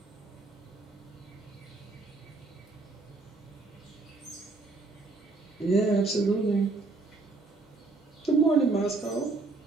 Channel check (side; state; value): left; quieter; 3.6 dB